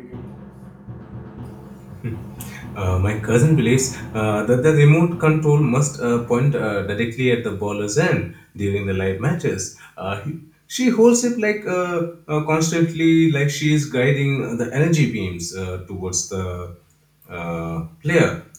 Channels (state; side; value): identical; both; correlation 1.00